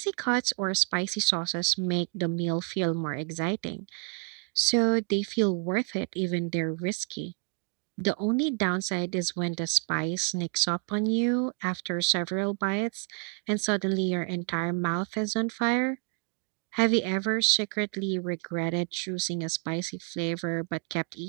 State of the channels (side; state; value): left; quieter; 39.2 dB